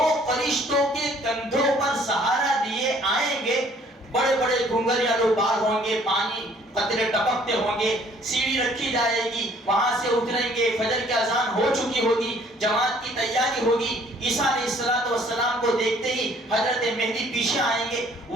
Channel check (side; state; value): both; normal; correlation 0.59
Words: فرشتوں کے کندھوں پر سہارا لیے آئیں گے. بڑے بڑے گھنگریالو بال ہوں گے, پانی قطرے ٹپکتے ہوں گے, سیڑھی رکھی جائے گی, وہاں سے اتریں گے, فجر کی اذان ہو چکی ہوگی, جماعت کی تیاری ہوگی. عیسیٰ علیہ السلام کو دیکھتے ہی حضرت مہدی پیچھے آئیں گے,